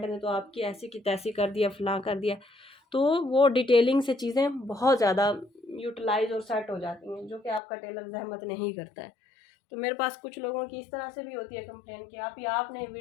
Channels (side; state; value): right; drops out; at 7.6 s